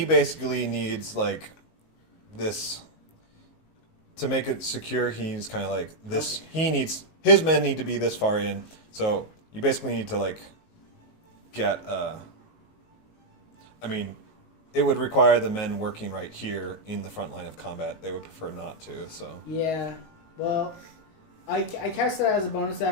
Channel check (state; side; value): late; right; 19 ms